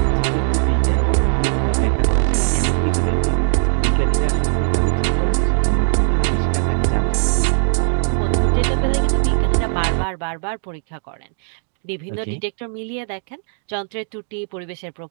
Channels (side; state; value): left; silent; digital silence